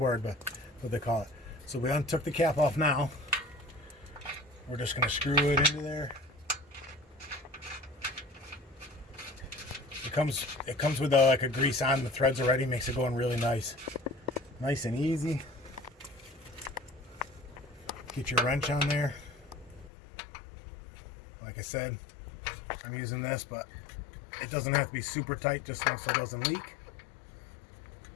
but that's what they call it. So we untook the cap off now. We're just going to screw it into there. It comes with like a grease on the threads already, makes it going really nice and easy. Get your wrench on there. Like I said, I'm using this, but it doesn't have to be super tight, just so it doesn't leak.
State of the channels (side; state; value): right; drops out; at 19.9 s